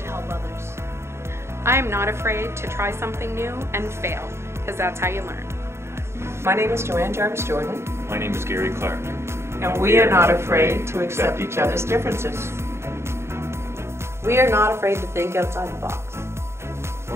help others. I am not afraid to try something new and fail, because that's how you learn. My name is Joanne Jarvis Jordan. My name is Gary Clark. And we are not afraid to accept each other's differences. We are not afraid to think outside the box.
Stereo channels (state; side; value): late; left; 0.13 ms